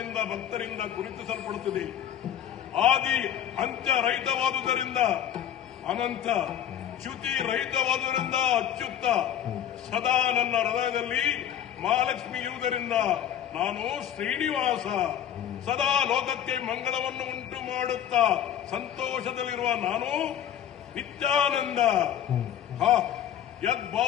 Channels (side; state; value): right; quieter; 10.2 dB